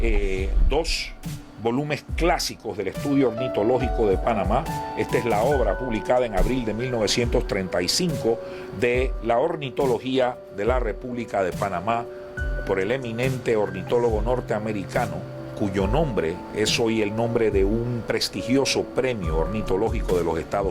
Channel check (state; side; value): identical; both; correlation 1.00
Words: dos volúmenes clásicos del estudio ornitológico de Panamá. Esta es la obra publicada en abril de 1935 de la ornitología de la República de Panamá por el eminente ornitólogo norteamericano, cuyo nombre es hoy el nombre de un prestigioso premio ornitológico de los